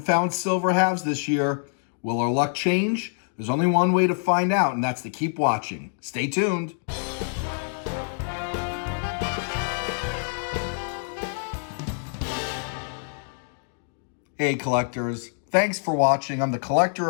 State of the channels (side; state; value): right; silent; 61 dB below the other